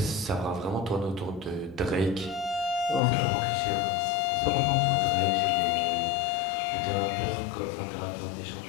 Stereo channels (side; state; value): right; drops out; at 3.0 s